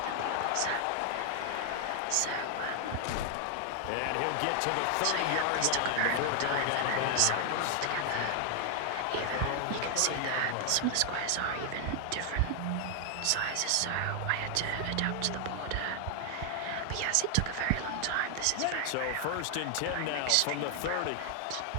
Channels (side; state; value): both; different; correlation 0.00